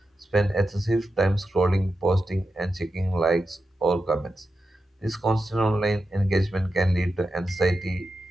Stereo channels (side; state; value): both; normal; correlation 0.90